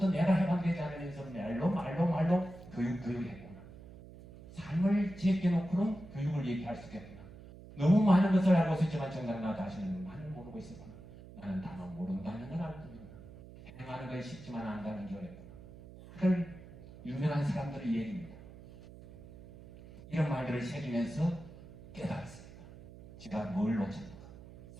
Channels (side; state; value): right; noise; hum, 17 dB below the sound